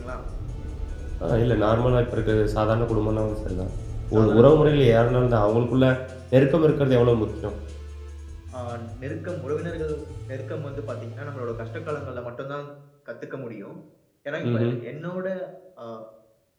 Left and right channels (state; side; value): identical; both; correlation 1.00